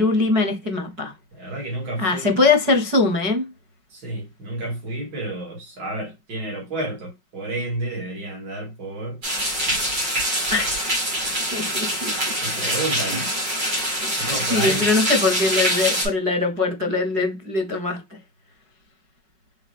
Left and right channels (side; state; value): left; late; 5.4 ms